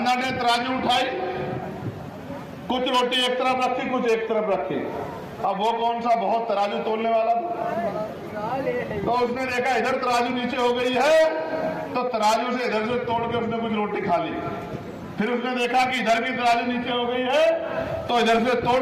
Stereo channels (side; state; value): both; identical; correlation 1.00